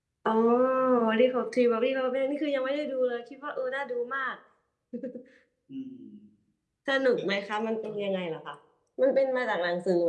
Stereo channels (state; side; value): identical; both; correlation 1.00